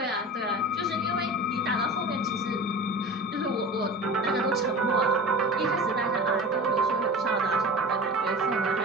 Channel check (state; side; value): normal; both; correlation 0.34